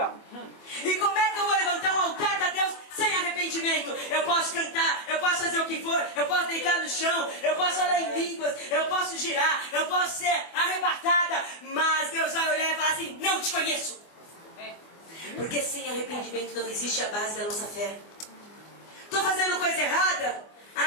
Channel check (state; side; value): late; right; 24 ms